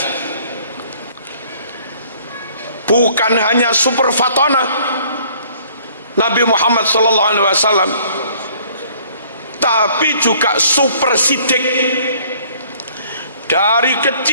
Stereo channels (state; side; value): inverted; both; correlation -0.58